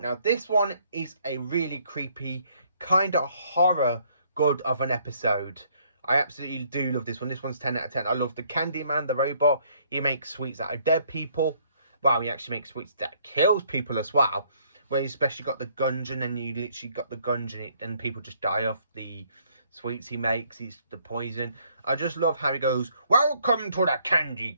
this one is a really creepy, kind of horror good of an episode. I absolutely do love this one. This one's 10 out of 10. I love the Candyman, the robot. He makes sweets out of dead people. Well, he actually makes sweets that kills people as well. Where you especially got the gungeon, and then you literally got the gungeon, and people just die off the sweets he makes. He's the poison. I just love how he goes, "Welcome to the candy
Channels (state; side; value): inverted; both; correlation -0.66